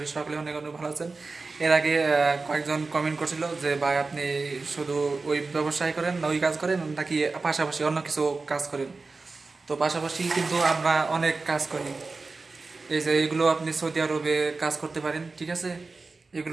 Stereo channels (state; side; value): quieter; left; 3.9 dB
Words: সকলে অনেক অনেক ভালো আছেন। এর আগে কয়েকজন কমেন্ট করছিল যে ভাই আপনি শুধু ওই ব্যবসায় করেন না ওই কাজ করেন নাকি পাশাপাশি অন্য কিছু কাজ করেন। তো পাশাপাশি কিন্তু আমরা অনেক কাজ করি। এই যে এগুলো আপনি সৌদি আরবে কাজ করতে পারেন, ঠিক আছে?